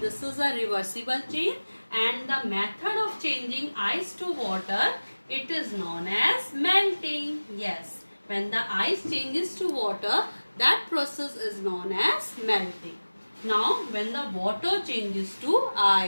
is a reversible change, and the method of changing ice to water, it is known as melting. Yes. When the ice changes to water, that process is known as melting. Now, when the water changes to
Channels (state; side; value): inverted; both; correlation -1.00